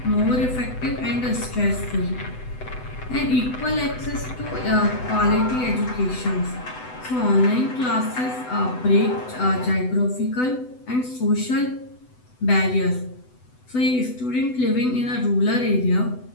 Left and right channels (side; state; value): right; late; 8.0 ms